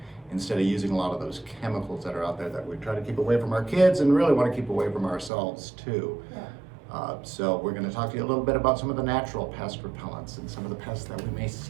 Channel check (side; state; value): left; drops out; at 5.3 s